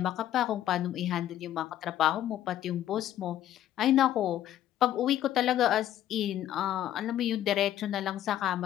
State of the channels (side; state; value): right; quieter; 12.1 dB